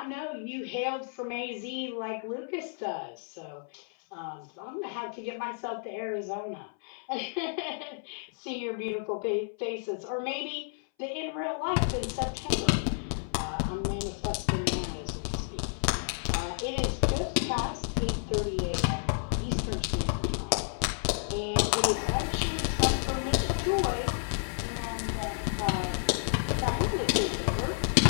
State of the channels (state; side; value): silent; right; 57 dB below the other